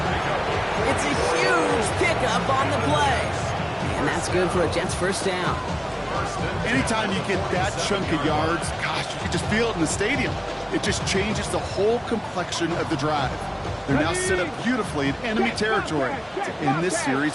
It's a huge pickup on the play. And that's good for a Jets first down. Anytime you get that chunk of yards, gosh, you can just feel it in the stadium. It just changes the whole complexion of the drive. They're now set up beautifully in enemy territory to end this series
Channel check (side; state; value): both; identical; correlation 1.00